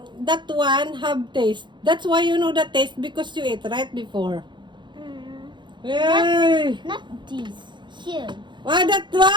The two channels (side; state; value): left; late; 0.23 ms